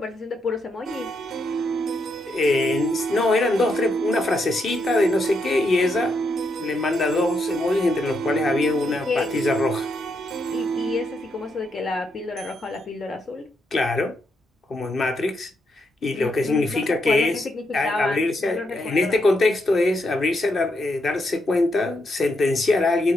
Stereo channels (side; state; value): both; normal; correlation 0.80